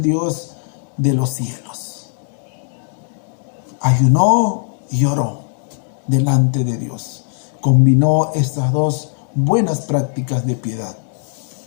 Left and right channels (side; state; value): right; silent; digital silence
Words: Dios de los cielos. Ayunó y oró delante de Dios. Combinó estas dos buenas prácticas de piedad.